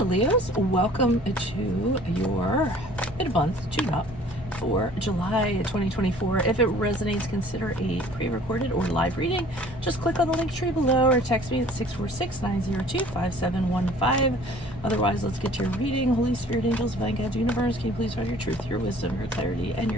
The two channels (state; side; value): normal; both; correlation 0.51